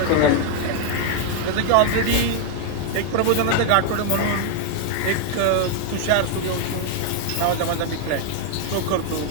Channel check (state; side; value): different; both; correlation 0.00